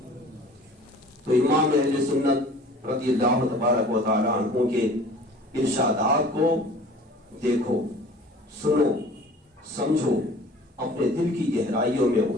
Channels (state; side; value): normal; both; correlation 0.46